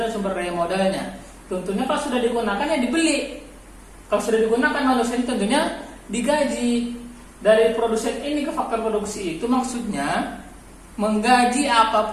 dan sumber daya modalnya. Tentunya kalau sudah digunakan ya dibeli. Kalau sudah digunakan manusia tentunya digaji. Dari produsen ini ke faktor produksi itu maksudnya menggaji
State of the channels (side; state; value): both; identical; correlation 1.00